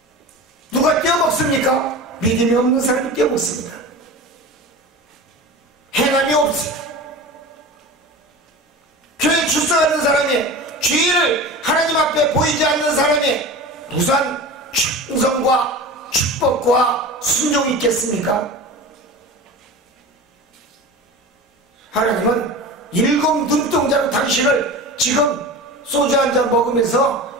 누가 떼어먹습니까? 믿음이 없는 사람이 떼어먹습니다. 행함이 없습니다. 교회 출석하는 사람이 주의를 하나님 앞에 보이지 않는 사람이 무슨 충성과 축복과 순종이 있겠습니까? 하나님은 일곱 눈동자로 당신을 지금 소주 한 잔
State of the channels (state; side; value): normal; both; correlation 0.32